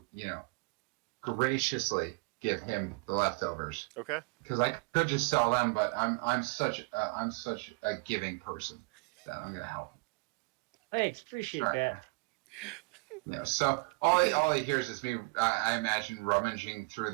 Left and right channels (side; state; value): left; quieter; 29.0 dB